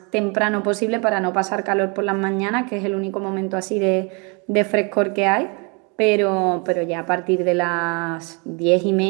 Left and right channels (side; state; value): left; quieter; 32.9 dB